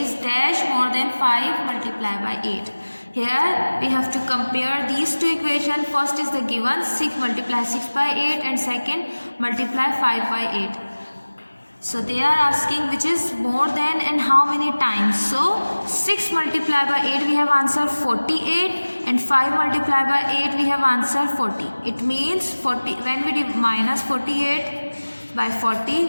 is dash more than 5 multiplied by 8. Here we have to compare these two equations. First is the given 6 multiply 6 by 8 and second multiply 5 by 8. So they are asking which is more than and how many times. So 6 multiplied by 8 we have answer 48 and 5 multiplied by 8 we have answer 40. It means 40, when we minus 48 by 40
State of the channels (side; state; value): both; inverted; correlation -1.00